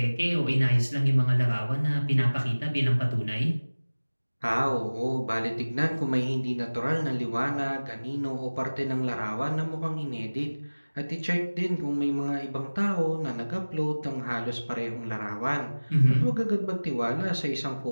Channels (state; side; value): inverted; both; correlation -1.00